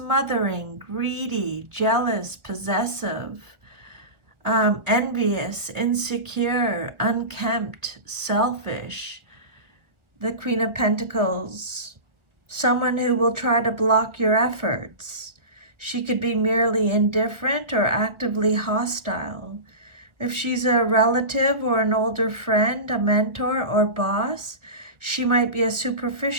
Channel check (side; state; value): left; late; 1.2 ms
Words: greedy, jealous, possessive, envious, insecure, unkempt, selfish. The Queen of Pentacles, someone who will try to block your efforts. She could be merely indifferent or actively hostile. If she's a relative or an older friend, a mentor or boss, she might be a